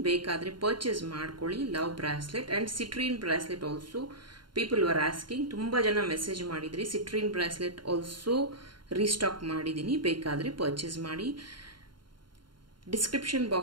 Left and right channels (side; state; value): left; late; 0.72 ms